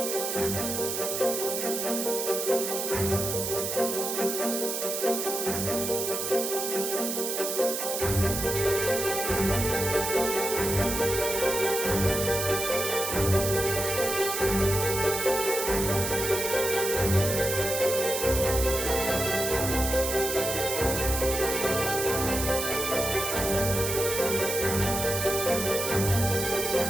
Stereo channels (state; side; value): noise; right; hiss, 3 dB below the sound